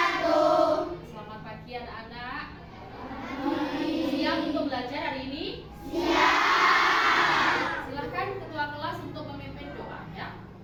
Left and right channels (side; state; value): both; identical; correlation 1.00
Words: Selamat pagi anak-anak. Siap untuk belajar hari ini? Siap. Silahkan ketua kelas untuk memimpin doa ya.